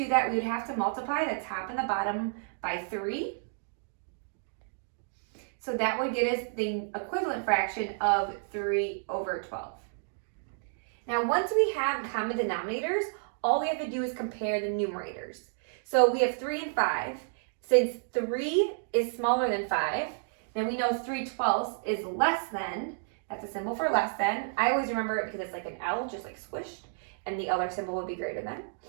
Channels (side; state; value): left; silent; digital silence